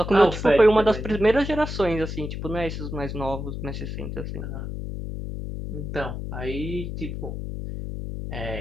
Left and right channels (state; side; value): noise; left; hum, 6 dB below the sound